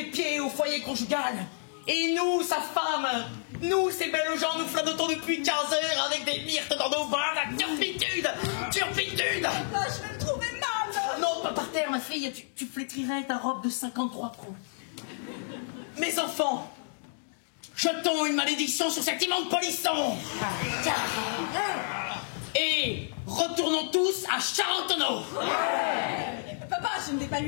pieds au foyer conjugal. Et nous, sa femme, nous, ces belles gens, nous flottons depuis 15 heures avec des myrtes dans nos bras, la turpitude! Ah, je vais me trouver mal. Non, pas par terre, ma fille, tu flétrirais ta robe de 53 pros. Mes enfants, jetons une malédiction sur cet immonde polisson. Et retournons tous à Charentonneau. Papa, je ne vais pas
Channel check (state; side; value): silent; right; digital silence